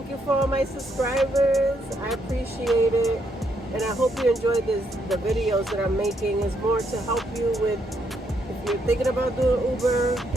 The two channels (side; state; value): both; normal; correlation 0.75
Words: you for all my subscribers. I appreciate it. And I hope you enjoyed the videos that I'm making. It's more to help you with, if you're thinking about doing Uber,